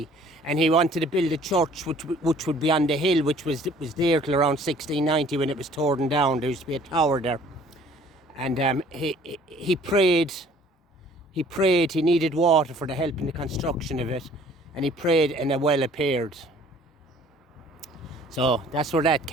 and he wanted to build a church which would be on the hill, which was there till around 1690 when it was torn down. There used to be a tower there, and he prayed. He needed water for the help in the construction of it, and he prayed, and a well appeared. So that's where that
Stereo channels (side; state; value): both; normal; correlation 0.55